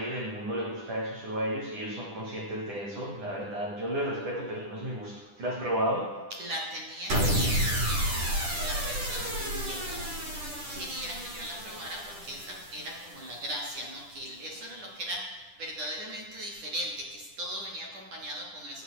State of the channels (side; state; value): left; late; 10 ms